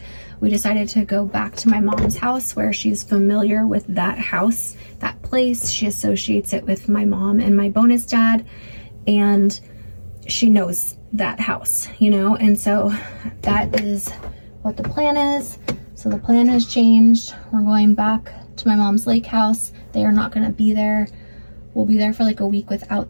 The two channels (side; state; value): both; inverted; correlation -1.00